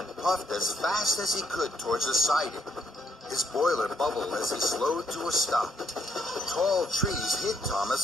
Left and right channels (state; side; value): normal; both; correlation 0.71